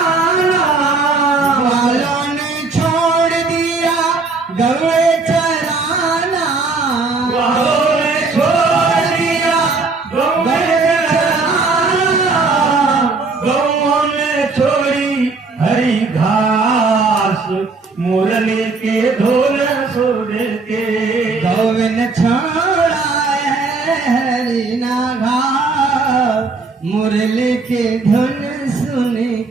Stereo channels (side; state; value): left; quieter; 4.0 dB